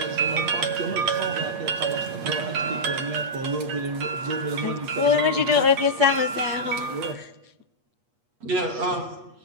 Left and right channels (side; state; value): left; late; 8.4 ms